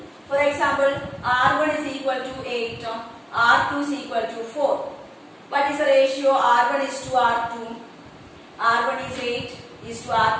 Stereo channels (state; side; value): identical; both; correlation 1.00